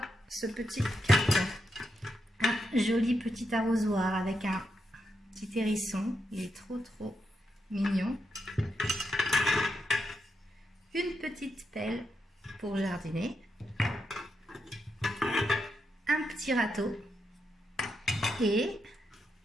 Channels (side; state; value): both; normal; correlation 0.83